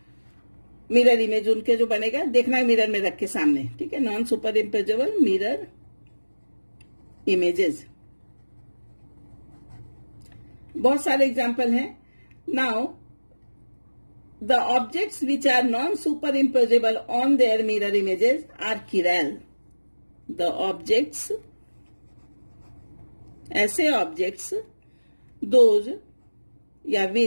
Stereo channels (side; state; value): both; inverted; correlation -1.00